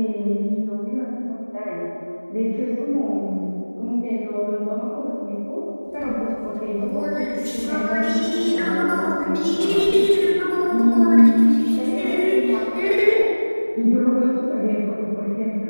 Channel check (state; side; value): inverted; both; correlation -1.00